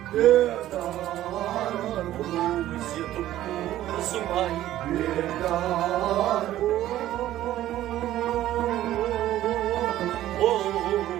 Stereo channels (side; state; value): left; quieter; 13.6 dB